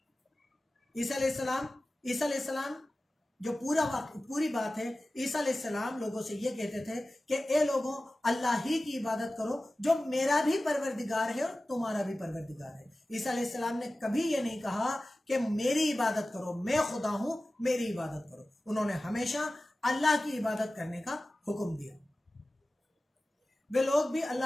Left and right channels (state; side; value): normal; both; correlation 0.96